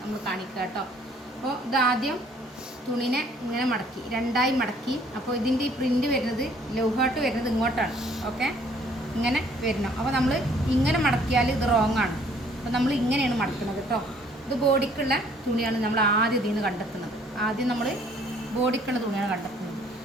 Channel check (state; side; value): normal; both; correlation 0.60